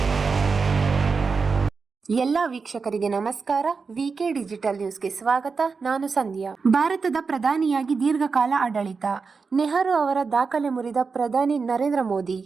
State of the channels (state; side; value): quieter; left; 4.9 dB